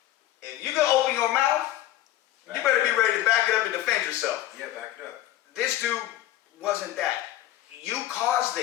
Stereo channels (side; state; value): right; quieter; 13.9 dB